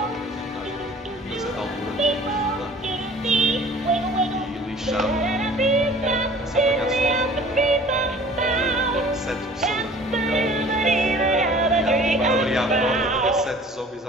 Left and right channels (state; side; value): normal; both; correlation 0.48